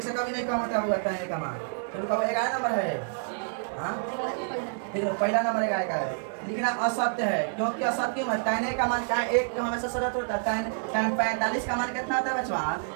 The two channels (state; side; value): silent; left; digital silence